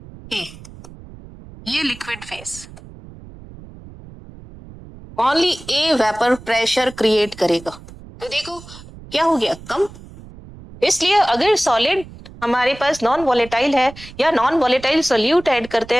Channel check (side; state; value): right; noise; rumble, 18 dB below the sound